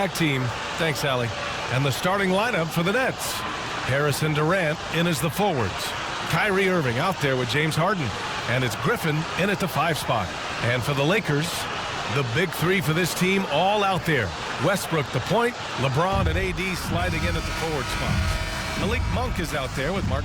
team. Thanks, Allie. And the starting lineup for the Nets. Harrison Durant in as the forwards. Kyrie Irving out there with James Harden. And it's Griffin in at the 5 spot. And for the Lakers, the big three for this team all out there. Westbrook the point, LeBron and AD sliding in at the forward spot. Malik Monk is out there with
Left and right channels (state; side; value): identical; both; correlation 1.00